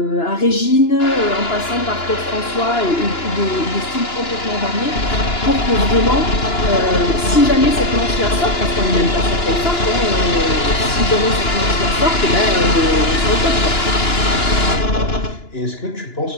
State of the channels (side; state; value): right; late; 2.9 ms